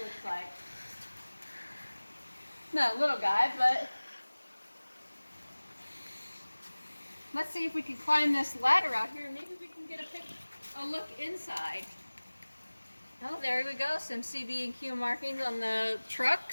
looks like. Not a little guy, but let's see if we can climb this ladder out here and maybe we can get a look inside. Oh, there we go. Some CB&Q markings on the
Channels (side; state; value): both; inverted; correlation -1.00